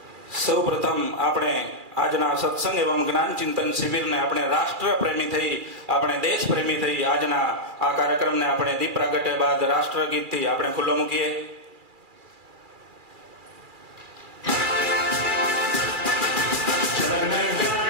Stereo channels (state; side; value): late; left; 2.4 ms